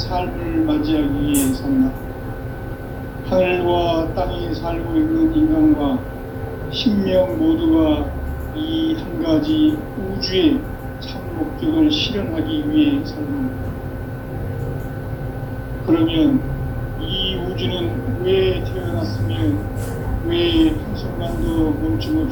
맞이하기 위해 산다. 하늘과 땅에 살고 있는 인간과 신명 모두가 이 한 가지 우주의 참 목적을 실현하기 위해 살고 있다. 그러면 이 우주는 왜 태어났으며 왜 한순간도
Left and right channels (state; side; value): identical; both; correlation 1.00